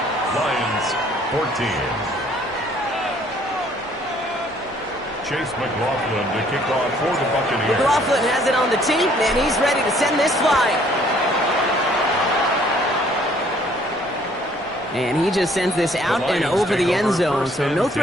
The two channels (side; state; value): both; normal; correlation 0.61